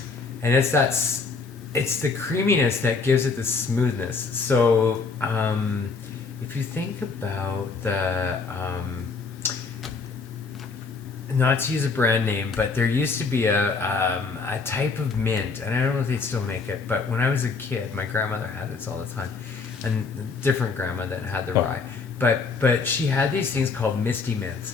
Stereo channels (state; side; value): quieter; right; 4.6 dB